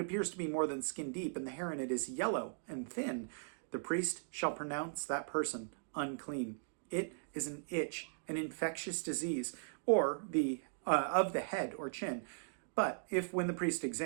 to be more than skin deep, and the hair in it is yellow and thin, the priest shall pronounce that person unclean. It is an itch, an infectious disease, or of the head or chin. But if, when the priest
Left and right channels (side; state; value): left; silent; digital silence